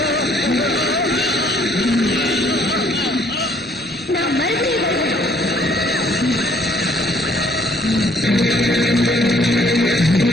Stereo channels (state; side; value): normal; both; correlation 0.63